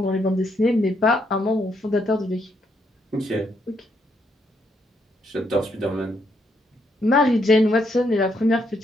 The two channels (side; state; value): both; normal; correlation 0.75